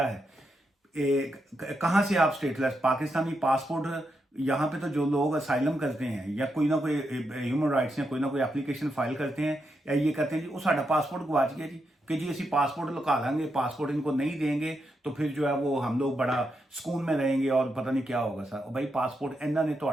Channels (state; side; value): normal; both; correlation 0.83